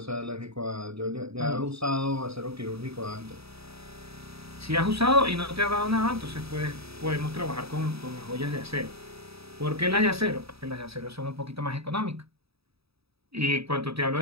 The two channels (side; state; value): left; late; 0.77 ms